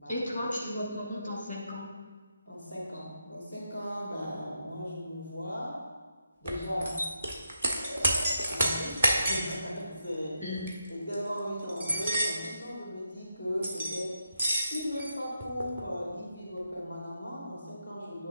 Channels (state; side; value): inverted; both; correlation -0.83